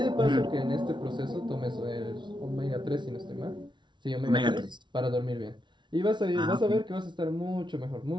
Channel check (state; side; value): late; left; 0.23 ms